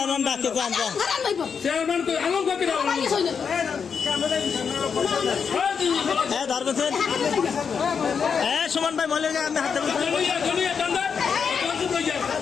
ডাকে যান হ্যাঁ ধরবেন হ্যাঁ সুমন ভাই মহিলা আমি হাতে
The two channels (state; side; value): quieter; right; 6.4 dB